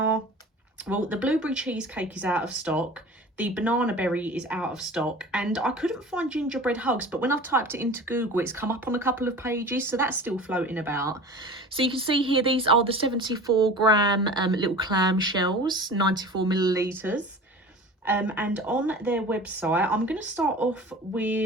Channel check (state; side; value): normal; both; correlation 0.38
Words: well, the Blueberry Cheesecake is out of stock, the Bananaberry is out of stock, and I couldn't find Gingerbread Hugs, but when I've typed it into Google, it's come up on a couple of pages, so that's still floating about. So you can see here, these are the 74 gram little clam shells, 94 millilitres. And on their website, I'm going to start off